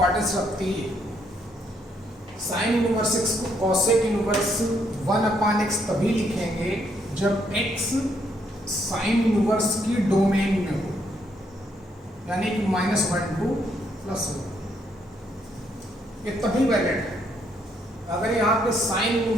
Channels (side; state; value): both; normal; correlation 0.72